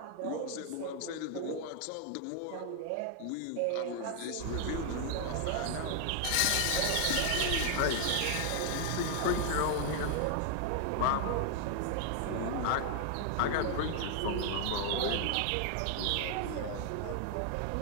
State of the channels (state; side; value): different; both; correlation 0.00